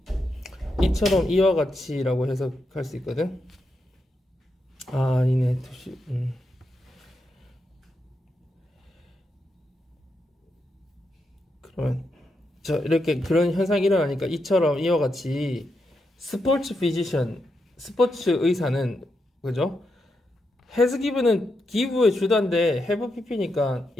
이처럼 이와 같이라고 해석할 수 있거든. 아니네. 그러면 저 이렇게 그런 현상이 일어나니까 이처럼 이와 같이 스포츠 피지션, 스포츠 의사는 그죠? has given은 give의 주단데 have pp니까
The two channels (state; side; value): normal; both; correlation 0.84